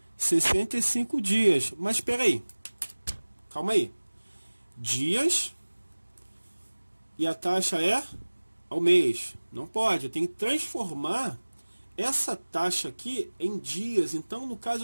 65 dias. Mas espera aí. Calma aí. Dias e a taxa é ao mês. Não pode. Eu tenho que transformar essa taxa aqui em dias. Então, no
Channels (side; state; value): both; inverted; correlation -1.00